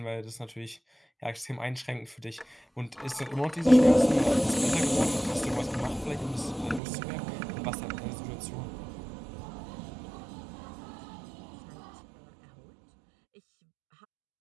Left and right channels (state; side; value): drops out; left; at 6.8 s